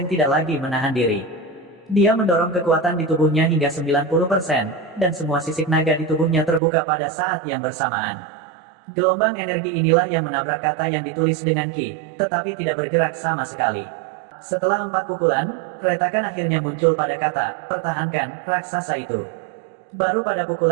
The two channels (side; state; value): left; drops out; at 6.6 s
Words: tidak lagi menahan diri. Dia mendorong kekuatan di tubuhnya hingga 90%, dan semua sisik naga di tubuhnya terbuka pada saat yang bersamaan. Gelombang energi inilah yang menabrak kata yang ditulis dengan Qi, tetapi tidak bergerak sama sekali. Setelah 4 pukulan, retakan akhirnya muncul pada kata, pertahankan, raksasa itu. Baru pada